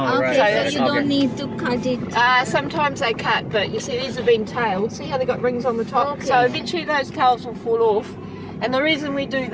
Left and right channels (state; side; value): identical; both; correlation 1.00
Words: Okay, right. so you don't need to cut it. Sometimes they cut, but you see these have been tailed. See how they got rings on the top? Okay. So eventually those tails will fall off. And the reason we do